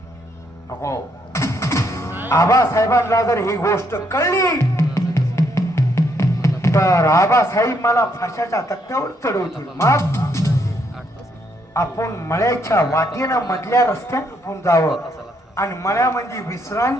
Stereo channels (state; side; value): normal; both; correlation 0.73